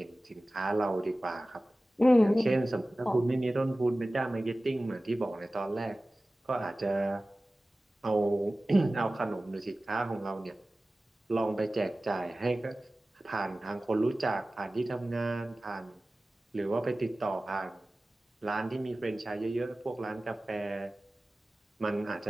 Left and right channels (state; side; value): normal; both; correlation 0.97